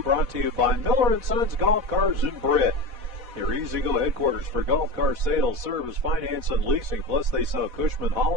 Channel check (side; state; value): left; late; 4.1 ms